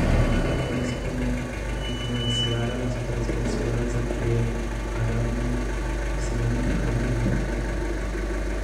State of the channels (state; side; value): identical; both; correlation 1.00